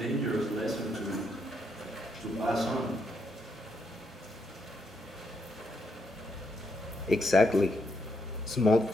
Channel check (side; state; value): both; normal; correlation 0.78